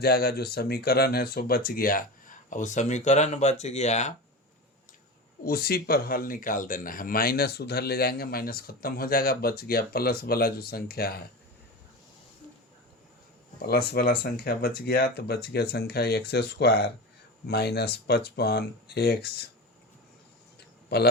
जो समीकरण है सो बच गया। अब वो समीकरण बच गया, उसी पर हल निकाल देना है। माइनस उधर ले जाएंगे, माइनस खत्म हो जाएगा, बच गया प्लस वाला जो संख्या है, प्लस वाला संख्या बच गया। तो बच गया संख्या x² माइनस 55x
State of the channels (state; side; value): normal; both; correlation 0.26